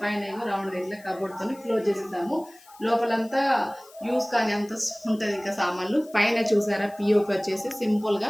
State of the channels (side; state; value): left; noise; hiss, 25 dB below the sound